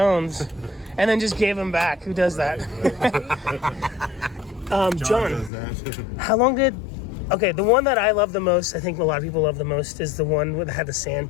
and then just gave them back. Who does that? John, how long did... Okay, the one that I love the most, I think a lot of people love the most, is the one that had the sand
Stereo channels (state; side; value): drops out; right; at 5.5 s